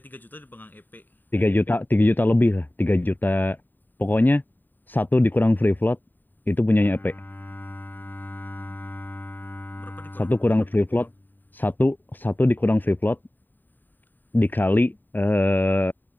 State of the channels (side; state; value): right; late; 0.090 ms